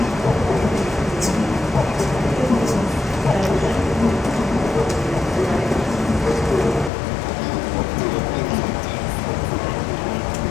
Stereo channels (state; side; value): drops out; right; at 6.9 s